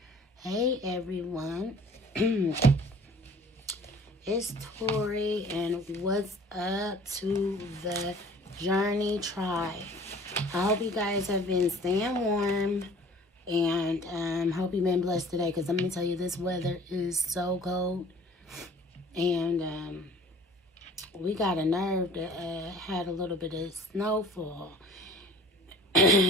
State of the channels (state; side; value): normal; both; correlation 0.49